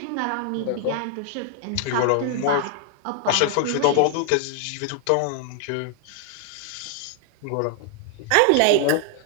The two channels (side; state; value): both; different; correlation 0.00